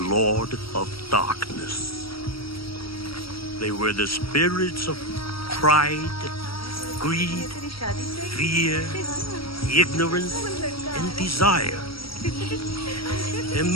of Darkness. They were the spirits of pride, greed, fear, ignorance, and desire.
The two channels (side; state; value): right; late; 0.75 ms